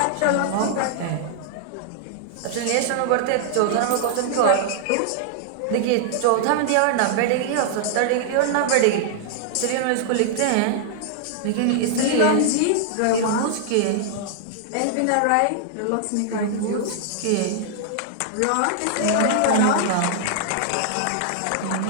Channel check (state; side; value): different; both; correlation -0.01